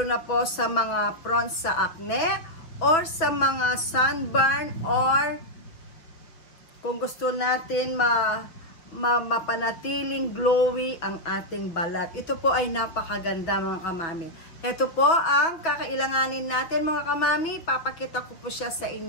po sa mga prone sa acne or sa mga sunburn, or kung gusto natin mapanatiling glowy ang ating balat. Ito po ay napakaganda mga kamami. Ito po ang kakailanganin natin mga kamami. Papakita ko po siya sa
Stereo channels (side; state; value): right; late; 5.8 ms